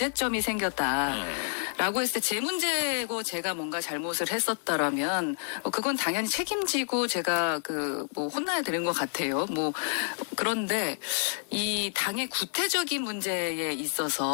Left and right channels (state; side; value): silent; right; digital silence